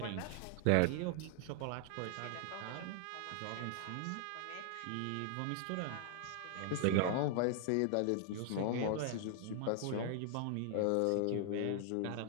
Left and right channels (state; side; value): different; both; correlation 0.00